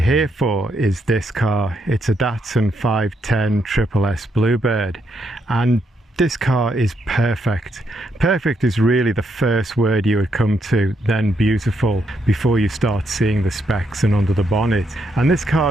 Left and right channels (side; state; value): both; normal; correlation 0.78